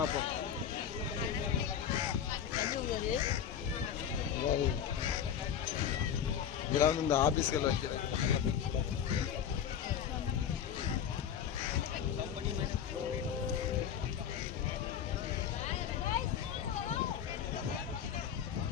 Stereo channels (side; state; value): right; quieter; 8.8 dB